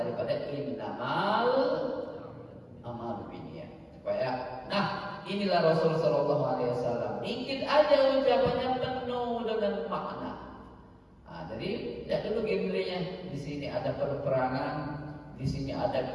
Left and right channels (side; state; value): both; identical; correlation 1.00